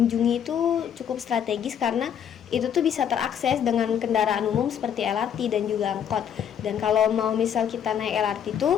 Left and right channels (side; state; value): right; quieter; 8.7 dB